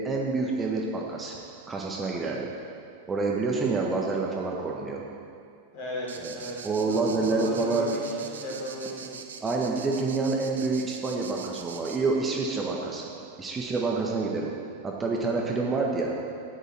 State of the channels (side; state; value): left; quieter; 3.2 dB